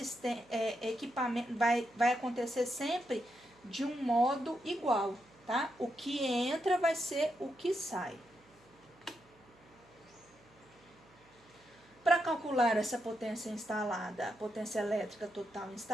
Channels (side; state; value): right; noise; hum, 29 dB below the sound